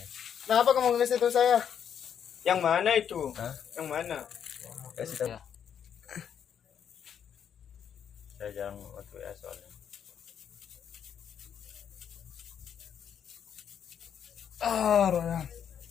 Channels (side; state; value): right; quieter; 8.4 dB